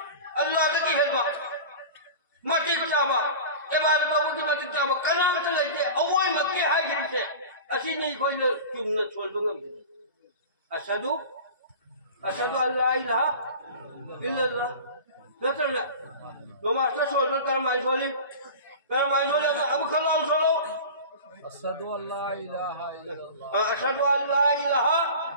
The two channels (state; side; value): inverted; both; correlation -0.35